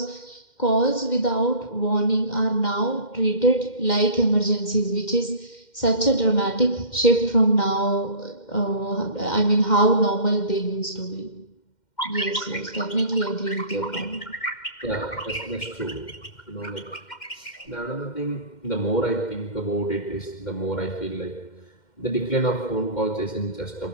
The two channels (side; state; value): right; late; 2.1 ms